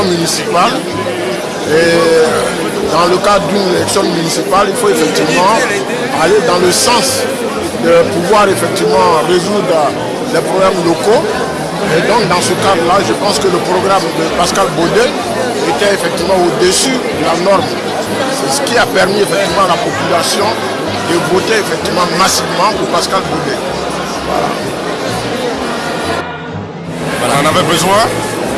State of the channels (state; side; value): identical; both; correlation 1.00